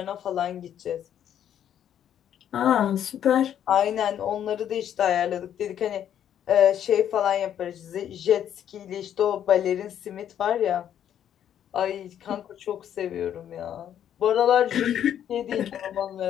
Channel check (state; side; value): quieter; right; 10.0 dB